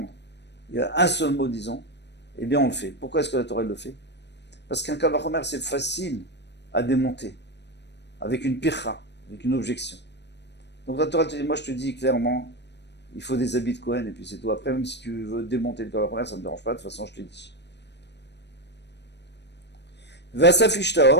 il y a un seul mot, disons, eh bien on le fait. Pourquoi est-ce que la Torah le fait? Parce qu'un Kalvachomer, c'est facile à démonter, avec une pircha, avec une objection. Donc la Torah te dit, moi je te dis clairement, il faut des habits de Kohen, et puis c'est tout. Après, même si tu veux démonter le Kalvachomer, ça ne me dérange pas, de toute façon je te l'ai dit. Vasaf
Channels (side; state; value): right; late; 0.50 ms